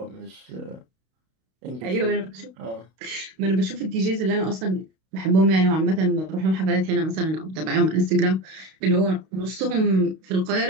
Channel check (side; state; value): left; late; 32 ms